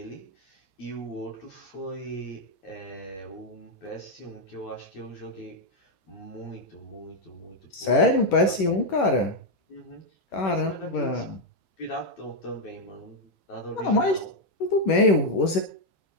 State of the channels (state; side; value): late; right; 10 ms